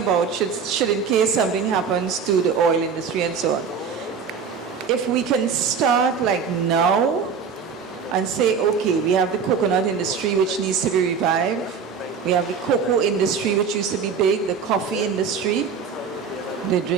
should in case something happens to the oil industry and so on. If we can start like now and say, okay, we have the coconut industry which needs to be revived. We have the cocoa industry which used to be big, the coffee industry. They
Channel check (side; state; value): left; quieter; 6.1 dB